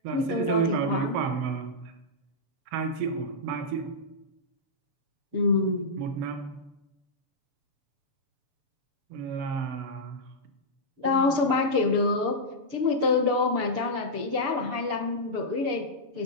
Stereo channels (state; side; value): late; left; 6.8 ms